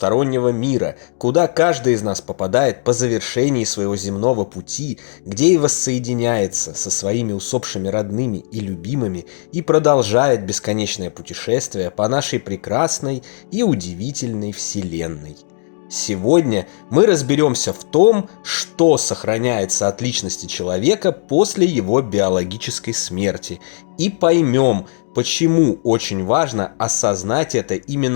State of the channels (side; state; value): right; silent; digital silence